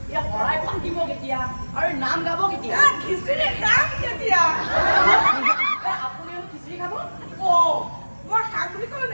এই শৰাই পাতিব কেতিয়া আৰু নাম গাব কেতিয়া খিচিৰি খাম কেতিয়া আপুনি খিচিৰি খাব মই খাম বুলি ক'লো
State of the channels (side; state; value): both; inverted; correlation -1.00